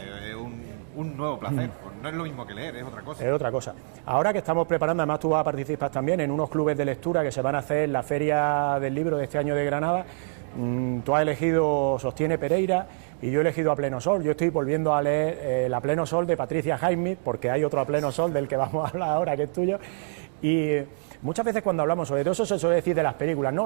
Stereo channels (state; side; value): silent; left; digital silence